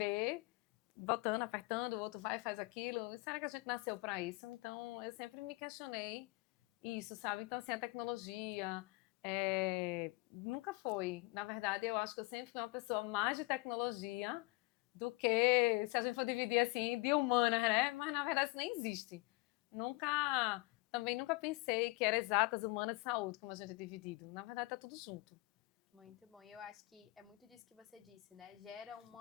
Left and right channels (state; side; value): quieter; right; 23.9 dB